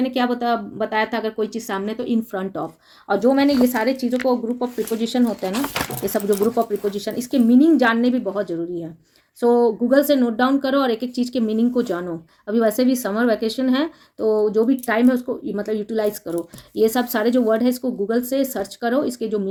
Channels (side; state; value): both; identical; correlation 1.00